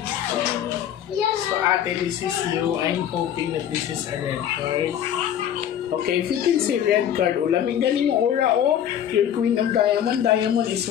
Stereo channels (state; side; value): quieter; right; 10.0 dB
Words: So ate, this is you. I'm hoping that this is a red card. Okay, if you can say red card, lamig galing yung aura, oh. Your Queen of Diamond. Diamond is